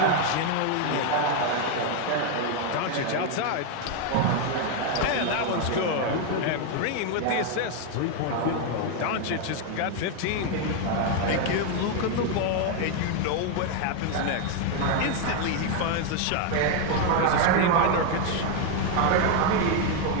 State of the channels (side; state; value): both; different; correlation 0.01